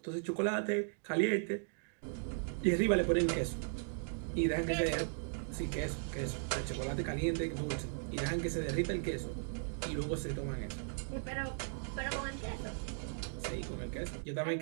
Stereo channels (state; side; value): silent; left; digital silence